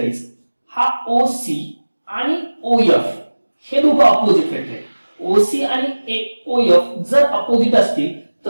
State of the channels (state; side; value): inverted; both; correlation -1.00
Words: हा ओसी आणि ओएफ हे दोघं अपोजिट वेक्टर आहेत. ओसी आणि ओएफ जर अपोजिट असतील